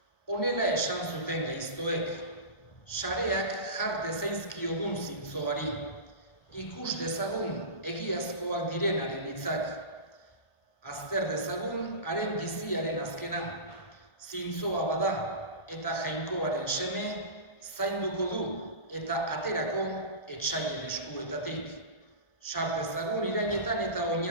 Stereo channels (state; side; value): late; right; 1.4 ms